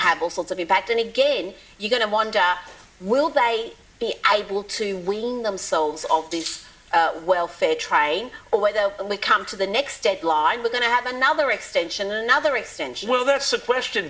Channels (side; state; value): both; identical; correlation 1.00